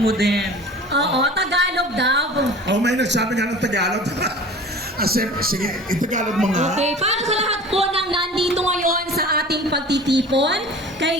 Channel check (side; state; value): both; normal; correlation 0.41